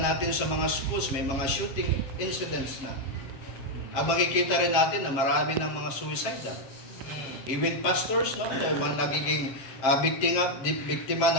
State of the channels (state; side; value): late; right; 7.5 ms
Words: sa mga schools, may mga shooting incidents na. Ang makikita rin natin na marami ng mga suicidal. Even pastors, no, mga nagiging biktima